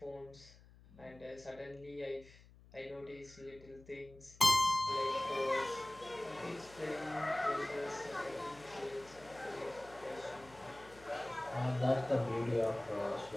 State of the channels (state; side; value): noise; left; hum, 23 dB below the sound